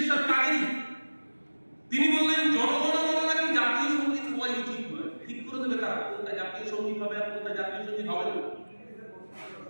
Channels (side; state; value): both; inverted; correlation -1.00